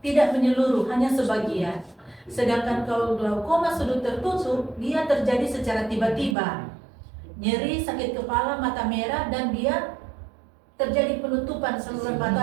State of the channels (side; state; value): left; drops out; at 6.4 s